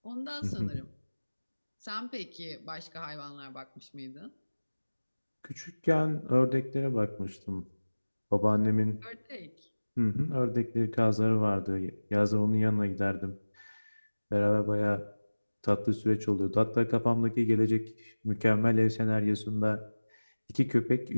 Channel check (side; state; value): both; inverted; correlation -1.00